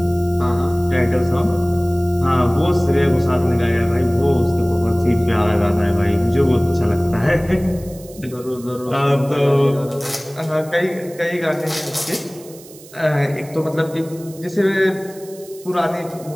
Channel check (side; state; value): right; noise; hiss, 21 dB below the sound